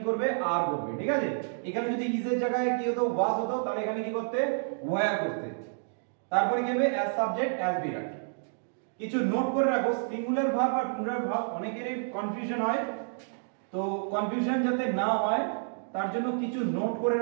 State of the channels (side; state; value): left; silent; digital silence